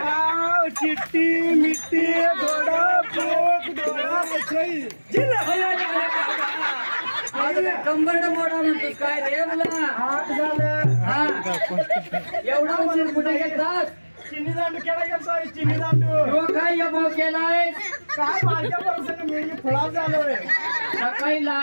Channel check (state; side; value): inverted; both; correlation -1.00